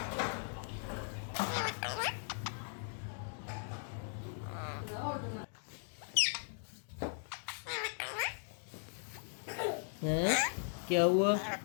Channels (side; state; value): right; silent; digital silence